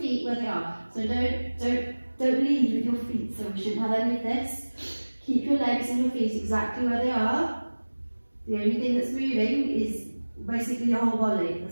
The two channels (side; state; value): both; inverted; correlation -1.00